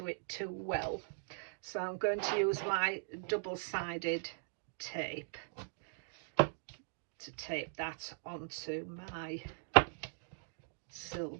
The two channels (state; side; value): silent; left; digital silence